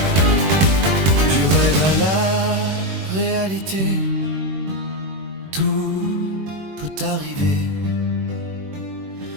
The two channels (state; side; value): late; left; 21 ms